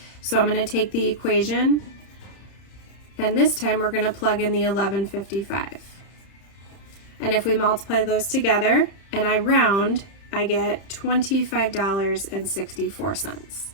So I'm going to take the equation, and this time we're going to plug in the 11.55. And if we multiply those together and I round, I get $25.64.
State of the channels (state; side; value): late; right; 31 ms